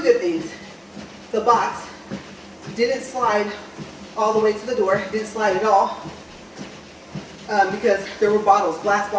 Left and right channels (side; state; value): both; identical; correlation 1.00